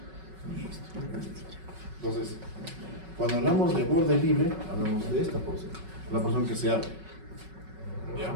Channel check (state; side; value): late; left; 5.3 ms